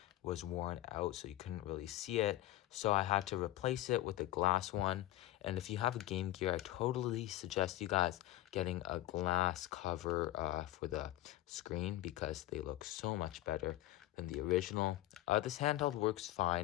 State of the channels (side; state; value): right; quieter; 15.2 dB